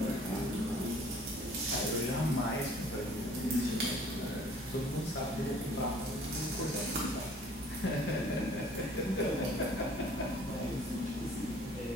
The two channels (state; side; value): normal; both; correlation 0.54